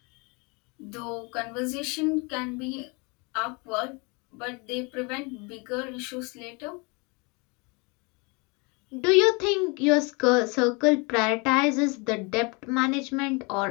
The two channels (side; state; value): right; quieter; 29.8 dB